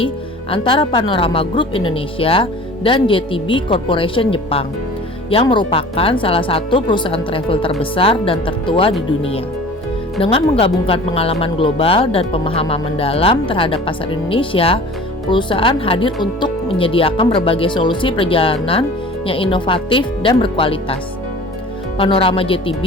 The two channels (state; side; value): normal; both; correlation 0.43